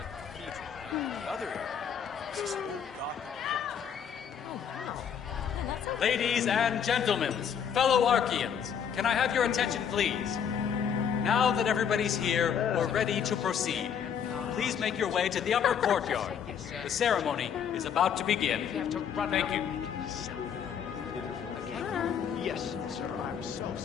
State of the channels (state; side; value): quieter; right; 7.9 dB